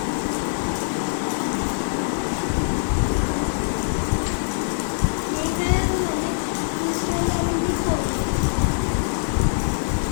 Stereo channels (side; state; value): right; silent; 63 dB below the other